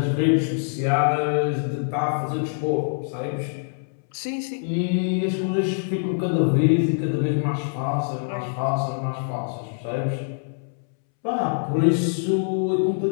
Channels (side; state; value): right; silent; 62 dB below the other